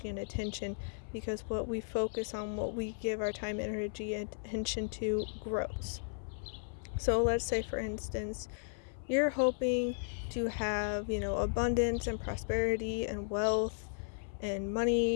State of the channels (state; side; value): silent; right; 54 dB below the other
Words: and attention. Because what we focus on, what we give our time, energy, and attention to grows. So let's say, for instance, you're hoping to have, abundance and prosperity and wealth and